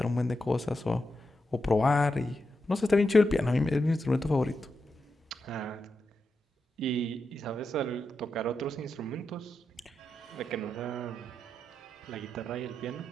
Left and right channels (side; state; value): both; normal; correlation 0.87